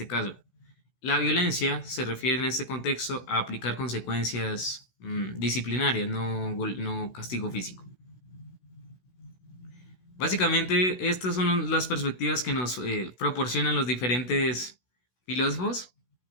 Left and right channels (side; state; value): right; late; 16 ms